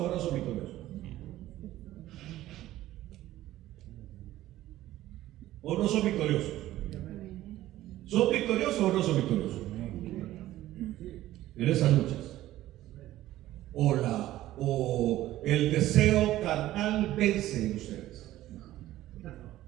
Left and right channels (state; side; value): quieter; left; 14.8 dB